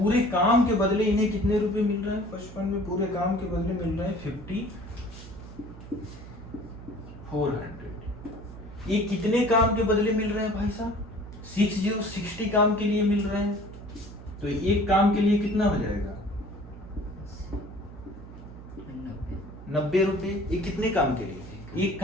काम के बदले इन्हें कितने रुपए मिल रहे हैं, 55 में पूरे काम के बदले मिल रहे हैं 5400। ये कितने काम के बदले मिल रहे हैं भाई साहब, 60 काम के लिए मिल रहे हैं। तो एक काम के लिए कितना हो जाएगा 90 रुपए। ये कितने काम के लिए, एक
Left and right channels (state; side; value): noise; right; hum, 15 dB below the sound